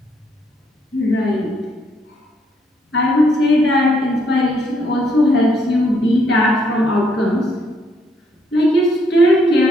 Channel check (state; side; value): normal; both; correlation 0.71